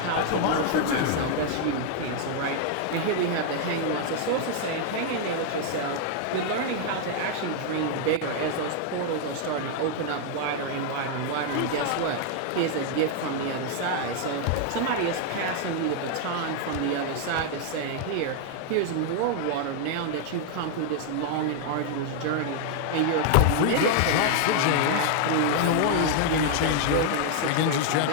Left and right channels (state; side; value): different; both; correlation 0.00